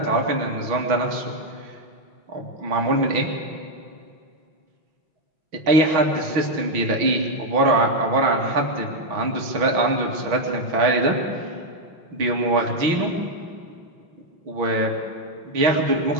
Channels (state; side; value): late; left; 6.2 ms